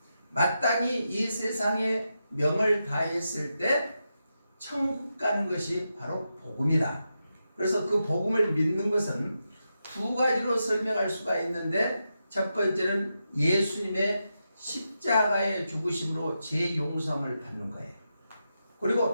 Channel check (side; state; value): both; inverted; correlation -0.87